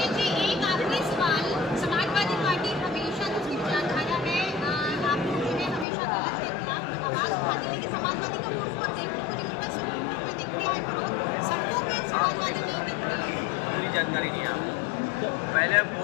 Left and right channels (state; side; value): drops out; right; at 5.9 s